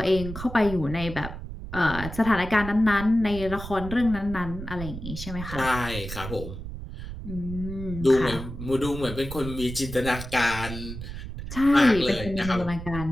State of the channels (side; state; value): right; noise; rumble, 9 dB below the sound